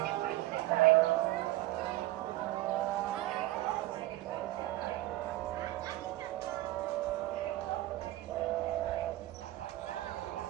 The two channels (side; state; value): left; quieter; 16.7 dB